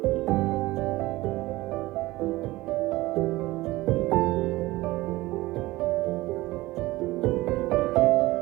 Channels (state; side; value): quieter; left; 19.0 dB